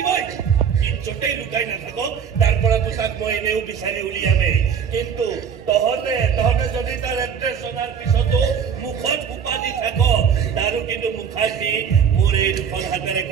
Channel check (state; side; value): quieter; left; 7.3 dB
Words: য'তেই লুকাই নাথাকক তাৰ পৰা তোক মই এনেও বিচাৰি উলিয়ামেই কিন্তু তহঁতে যদি তাৰ এড্ৰেছ জনাৰ পিছতো মুখত সোপা দি থাক তাৰো কিন্তু মুখাগ্নি মোৰ এই দুখন হাতেৰে